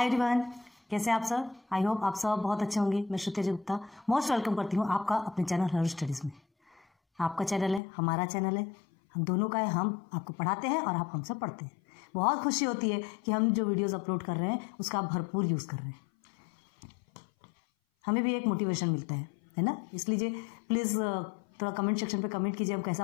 everyone, कैसे हैं आप सब। आई होप आप सब बहुत अच्छे होंगे। मैं श्रुति गुप्ता मोस्ट वेलकम करती हूँ आपका अपने चैनल हर स्टडीज़ में। आपका चैनल है, हमारा चैनल है, हम दोनों का है। हम आपको पढ़ाते हैं और आप हमसे पढ़ते हैं। बहुत खुशी होती है कि हम जो वीडियोज़ अपलोड कर रहे हैं उसका आप भरपूर यूज़ कर रहे हैं। हमें भी एक मोटिवेशन मिलता है ना। इसलिए प्लीज़ थोड़ा कमेंट सेक्शन पे कमेंट कीजिए, हम कैसा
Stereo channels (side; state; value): right; drops out; at 7.8 s